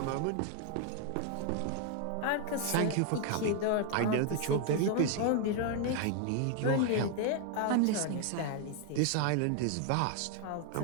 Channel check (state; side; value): different; both; correlation 0.00